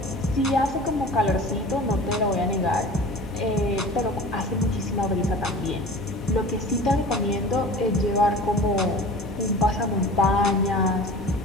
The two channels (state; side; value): normal; both; correlation 0.39